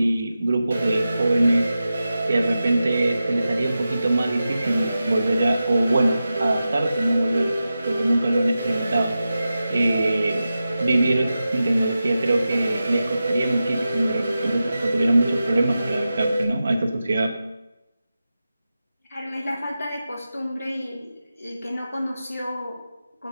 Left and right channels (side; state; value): both; inverted; correlation -0.92